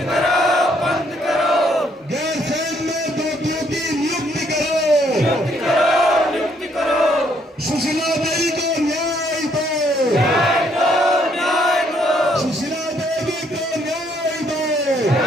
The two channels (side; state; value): both; normal; correlation 0.69